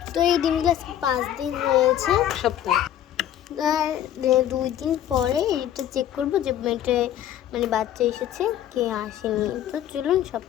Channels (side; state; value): right; quieter; 11.3 dB